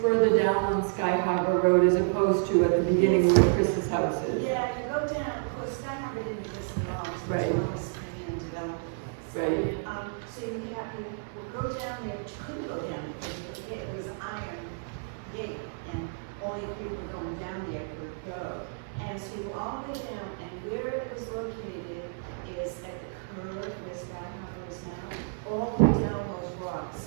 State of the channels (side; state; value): left; silent; 58 dB below the other